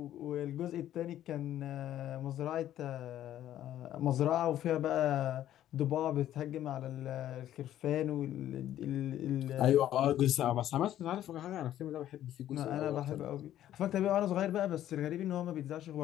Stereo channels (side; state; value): right; quieter; 12.2 dB